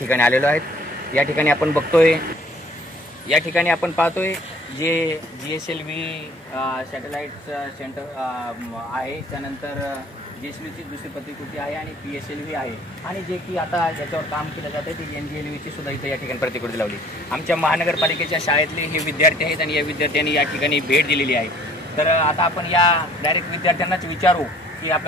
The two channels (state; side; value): normal; both; correlation 0.55